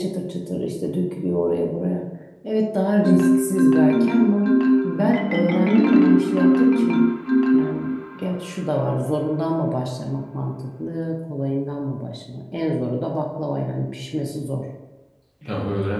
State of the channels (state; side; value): identical; both; correlation 1.00